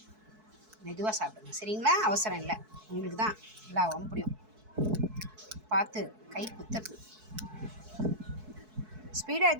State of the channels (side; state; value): left; late; 4.6 ms